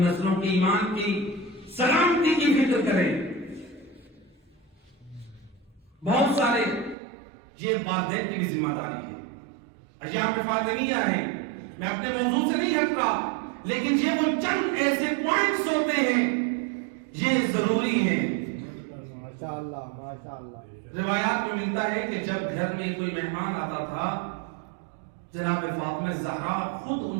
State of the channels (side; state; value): left; drops out; at 7.0 s